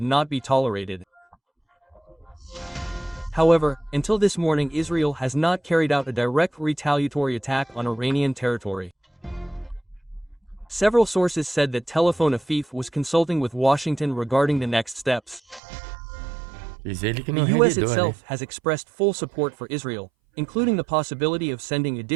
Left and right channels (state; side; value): drops out; left; at 15.6 s